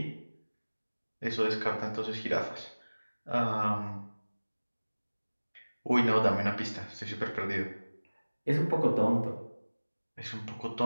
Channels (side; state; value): both; inverted; correlation -1.00